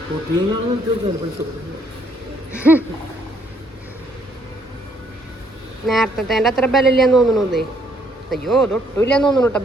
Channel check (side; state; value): both; normal; correlation 0.68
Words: നേരത്തെ അത്ര ബലമില്ലാന്ന് തോന്നണേ. അയ്യോ അതൊട്ടുമില്ലാന്ന് തോന്നണു കേട്ടോ